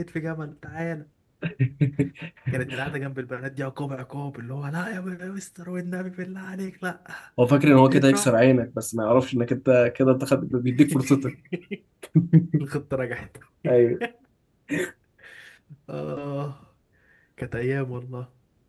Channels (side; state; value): both; identical; correlation 1.00